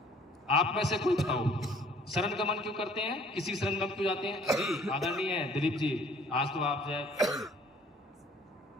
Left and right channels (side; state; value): both; normal; correlation 0.56